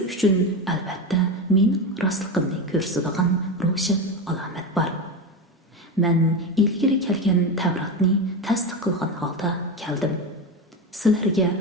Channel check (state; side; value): normal; both; correlation 0.18